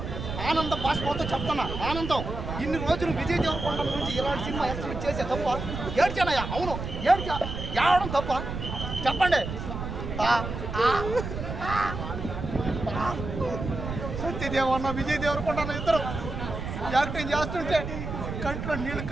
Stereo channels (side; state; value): right; noise; rumble, 6 dB below the sound